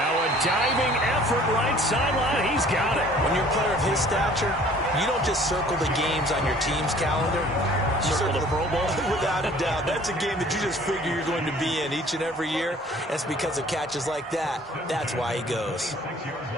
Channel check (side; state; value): both; normal; correlation 0.53